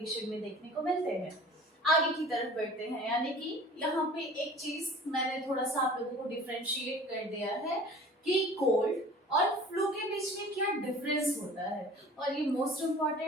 में देखने को मिलते हैं। आगे की तरफ बढ़ते हैं, यानी कि यहाँ पे एक चीज मैंने थोड़ा सा आप लोगों को डिफरेंशिएट कर दिया है कि कोल्ड और फ्लू के बीच में क्या डिफरेंस होता है, और ये मोस्ट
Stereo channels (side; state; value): both; normal; correlation 0.45